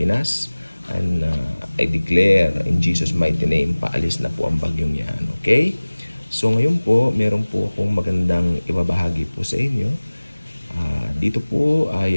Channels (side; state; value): both; inverted; correlation -1.00